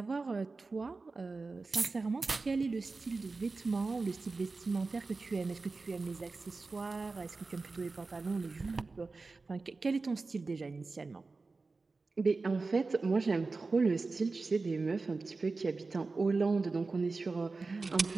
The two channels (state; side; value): quieter; left; 3.9 dB